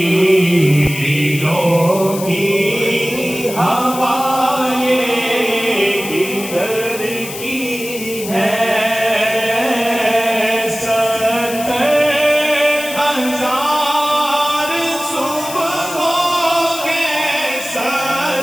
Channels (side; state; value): left; noise; hiss, 10 dB below the sound